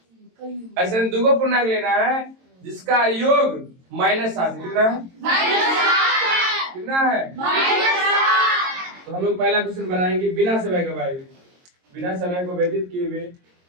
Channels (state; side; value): late; left; 22 ms